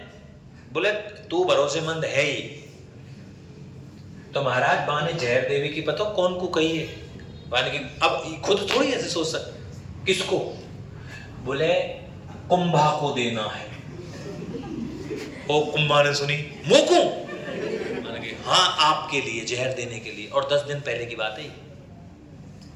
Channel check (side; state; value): both; identical; correlation 1.00